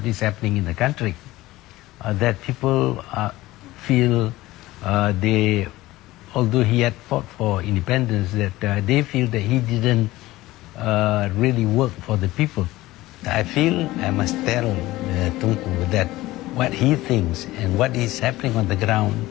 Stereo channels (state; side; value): quieter; right; 17.8 dB